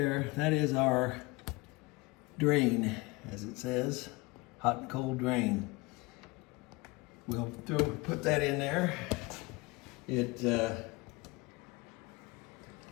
that is our drain, as it says, hot and cold drain. we'll put that in there. It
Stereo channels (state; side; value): quieter; right; 23.9 dB